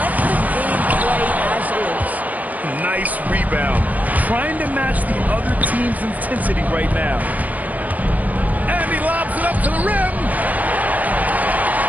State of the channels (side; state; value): left; late; 0.076 ms